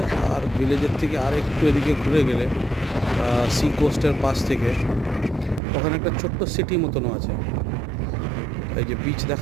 আর ভিলেজের থেকে আর একটু এদিকে ঘুরে গেলে সি কোস্টের পাশ থেকে ওখানে একটা ছোট্ট সিটি মতনও আছে। এই যে বিচ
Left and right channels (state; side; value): drops out; left; at 5.6 s